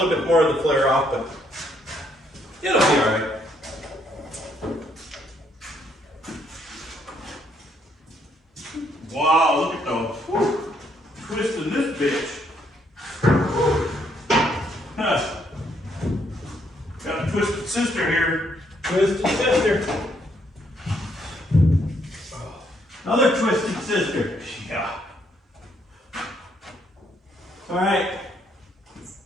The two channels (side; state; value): both; normal; correlation 0.71